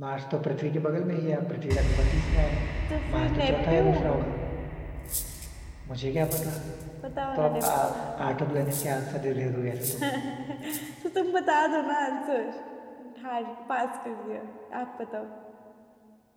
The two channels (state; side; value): identical; both; correlation 1.00